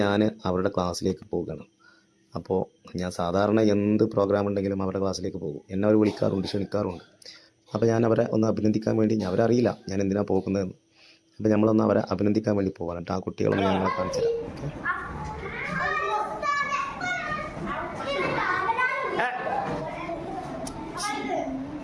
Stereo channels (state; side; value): identical; both; correlation 1.00